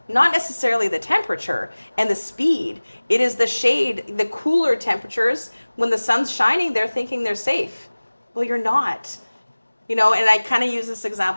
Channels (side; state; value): both; inverted; correlation -1.00